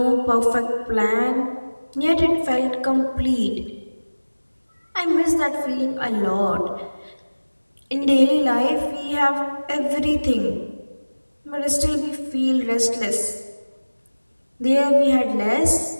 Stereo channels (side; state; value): both; inverted; correlation -1.00